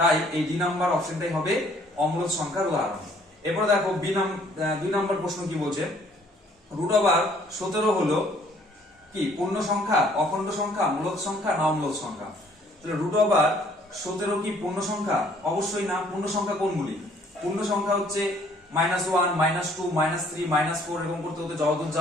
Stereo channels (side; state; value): both; normal; correlation 0.60